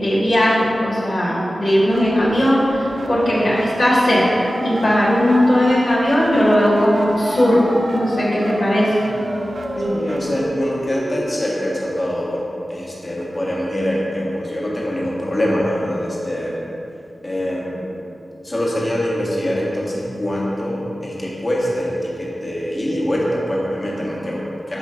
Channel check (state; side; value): normal; both; correlation 0.95